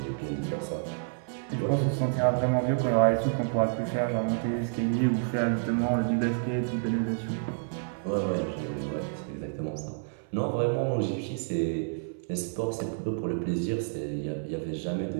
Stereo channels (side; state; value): left; silent; 58 dB below the other